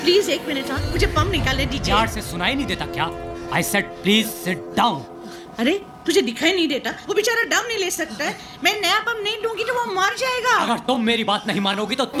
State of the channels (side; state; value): both; identical; correlation 1.00